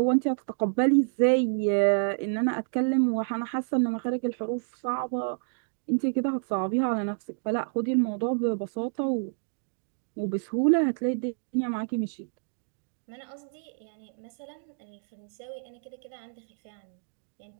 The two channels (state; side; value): silent; left; digital silence